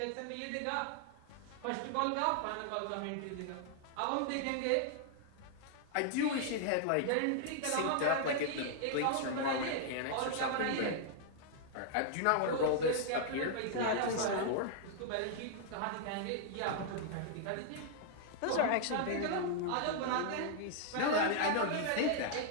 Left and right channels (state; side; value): different; both; correlation -0.01